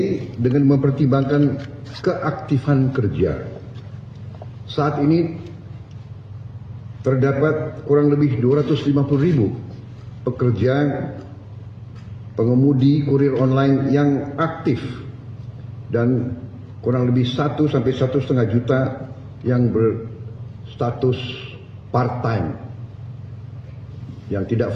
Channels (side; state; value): both; identical; correlation 1.00